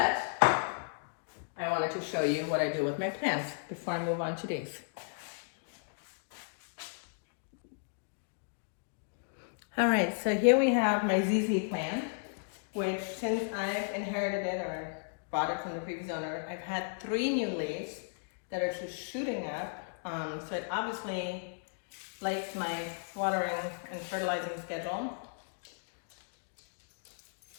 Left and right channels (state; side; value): silent; right; digital silence